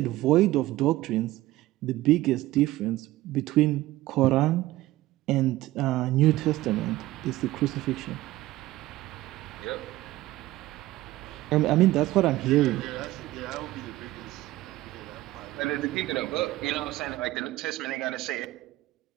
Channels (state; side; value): quieter; left; 16.9 dB